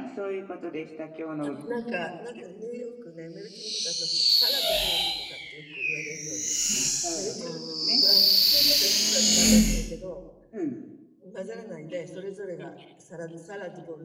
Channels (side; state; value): both; identical; correlation 1.00